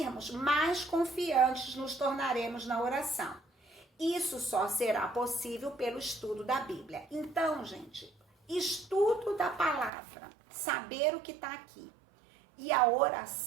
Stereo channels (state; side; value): drops out; left; at 9.9 s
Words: mais confiantes nos tornaremos na oração. Isso só será possível pelo estudo da Bíblia. Então, gente, estudo da palavra, saber o que está aqui, e a